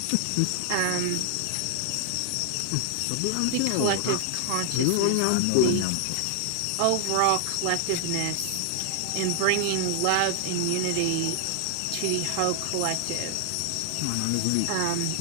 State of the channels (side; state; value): both; different; correlation 0.00